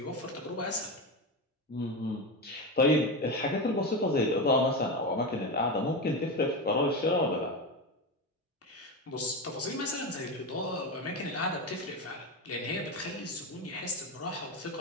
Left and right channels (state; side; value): normal; both; correlation 0.17